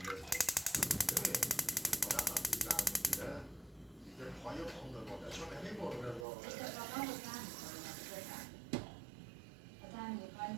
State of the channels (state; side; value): drops out; left; at 6.2 s